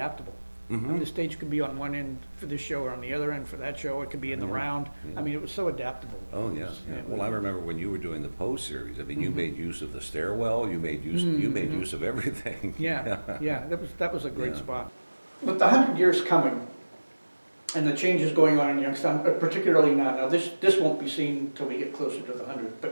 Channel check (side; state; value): both; inverted; correlation -1.00